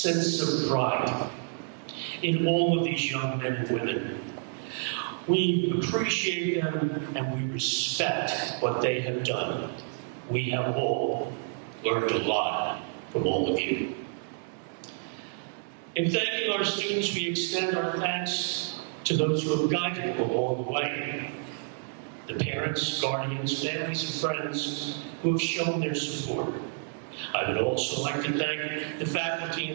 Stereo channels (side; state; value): left; silent; 58 dB below the other